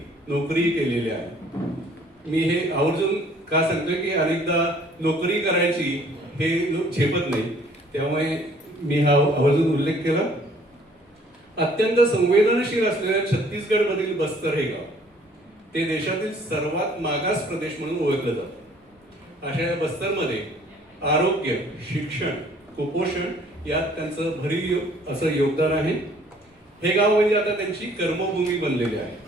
नोकरी केलेली आहे. मी हे आवर्जून का सांगतोय की अनेकदा नोकरी करायची हे लोक झेपत नाही, त्यामुळे मी हा आवर्जून उल्लेख केला. अत्यंत संवेदनशील असलेल्या छत्तीसगड मधील बस्तर हे गाव ते देशातील सर्वात मागास प्रदेश म्हणून ओळखलं जातं. अशा या बस्तरमध्ये आरोग्य, शिक्षण, कुपोषण यात त्यांचं भरीव असं योगदान आहे. हे गाव म्हणजे आता त्यांची कर्मभूमी बनलेली आहे.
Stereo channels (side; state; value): both; normal; correlation 0.57